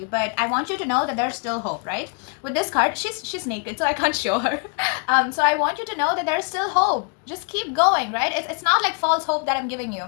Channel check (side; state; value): right; quieter; 36.6 dB